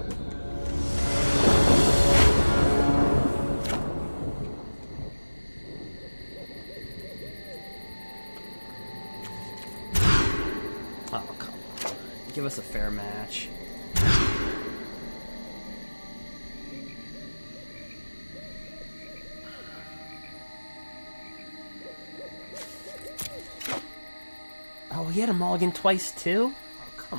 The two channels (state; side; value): inverted; both; correlation -1.00